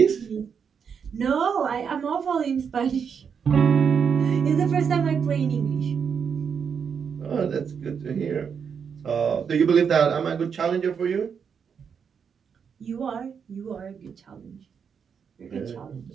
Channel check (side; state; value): left; quieter; 6.8 dB